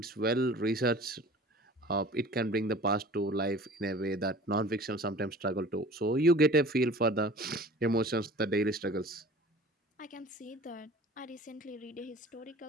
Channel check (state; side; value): normal; both; correlation 0.44